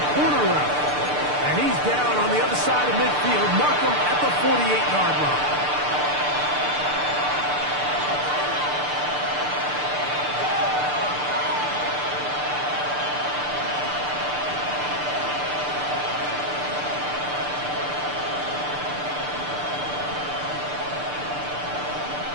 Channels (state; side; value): late; left; 6.8 ms